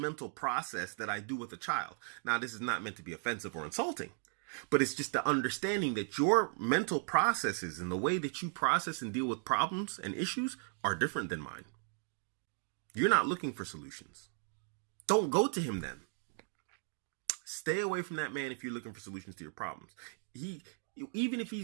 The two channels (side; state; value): left; silent; 53 dB below the other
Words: process that I do with a child. Now, this is not meant to be offensive or insulting, but it's just the understanding that your mental processes and the way that you process and deal with problems and issues are different than mine. You're not looking for solutions. Don't go to him then. Stay away from that man if you're looking for solutions to your problems. Even if